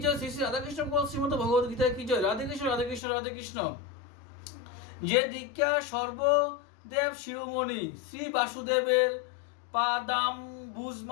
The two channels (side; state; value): right; drops out; at 3.0 s